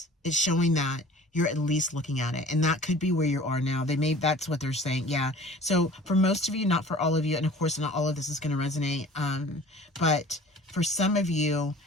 it's showing that you're at least looking at it. And that could be where you are now. That's what they're saying, yeah. So for most of you, not for all of you, and of course not all of this is going to resonate, but for some of you,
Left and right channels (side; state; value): both; normal; correlation 0.46